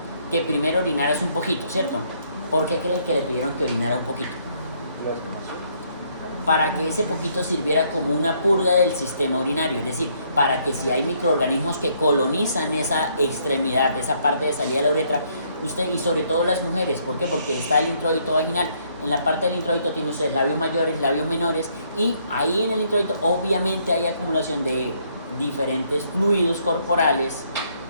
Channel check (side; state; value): both; inverted; correlation -0.69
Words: Que primero orinaras un poquito, ¿cierto? ¿Por qué creen que le pidieron que orinara un poquito? Para que ese poquito sirviera como una purga del sistema urinario, es decir, para que si hay microorganismos que colonizan esa extremidad, esa parte de salida de la uretra, usted, y sobre todo las mujeres, ¿por qué? Porque está el introito vaginal. En la parte del introito tiene ustedes labios mayores, labios menores, y ahí en el introito obviamente hay acumulación de diferentes fluidos corporales